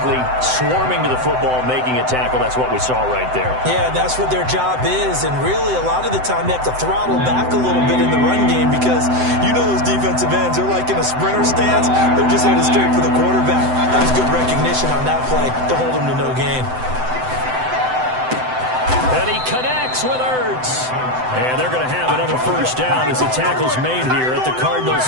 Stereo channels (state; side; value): late; left; 7.9 ms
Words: swarming to the football, making a tackle. That's what we saw right there. Yeah, that's what their job is. And really, a lot of the time, they have to throttle back a little bit in the run game because you know those defensive ends, they're like in a sprinter stance. They're just headed straight for the quarterback. That was good recognition on that play to hold him to no gain. And he connects with Ertz. And they're going to have another 1st down as the tackle's made here at the